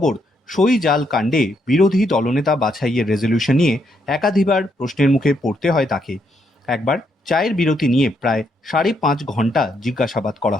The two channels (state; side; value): normal; both; correlation 0.76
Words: সই জাল কাণ্ডে বিরোধী দলনেতা বাছাইয়ের রেজলিউশন নিয়ে একাধিকবার প্রশ্নের মুখে পড়তে হয় তাকে। একবার চায়ের বিরতি নিয়ে প্রায় 5.5 ঘন্টা জিজ্ঞাসাবাদ করা